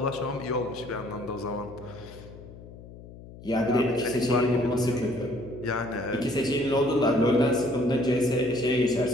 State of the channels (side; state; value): left; noise; hum, 17 dB below the sound